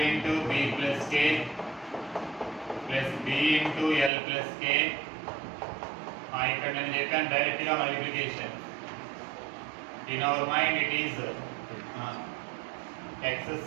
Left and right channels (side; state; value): left; drops out; at 4.1 s